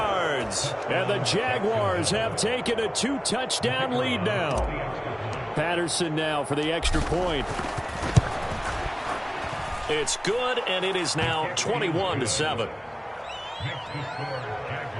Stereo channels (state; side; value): identical; both; correlation 1.00